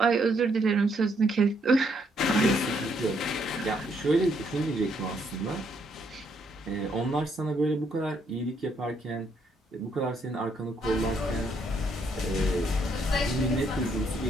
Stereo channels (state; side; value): normal; both; correlation 0.72